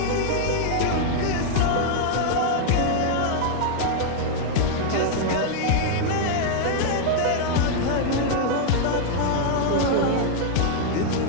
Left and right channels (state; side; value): different; both; correlation 0.00